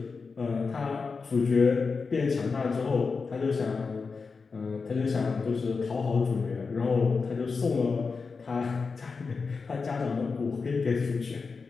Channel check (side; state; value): right; quieter; 4.7 dB